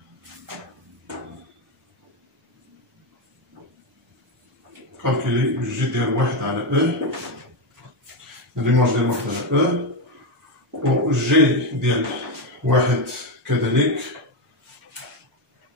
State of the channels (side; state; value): both; normal; correlation 0.09